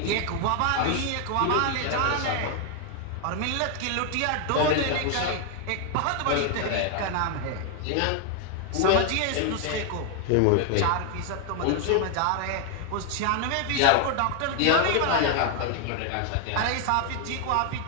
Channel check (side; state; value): both; different; correlation 0.01